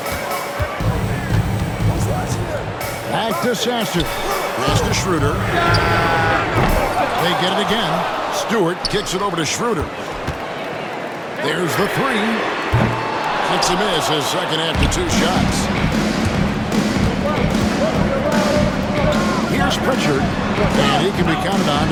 Back to Sasser. Pass to Schroeder. They get it again. Stewart kicks it over to Schroeder. There's the three. It's a miss his second after 2 shots. Here's Pritchard. And he can be counted on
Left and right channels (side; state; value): both; identical; correlation 1.00